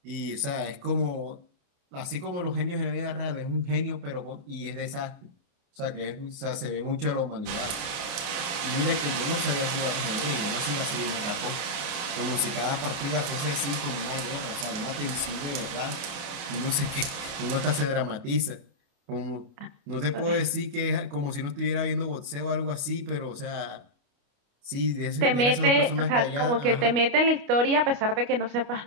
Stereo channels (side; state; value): left; late; 29 ms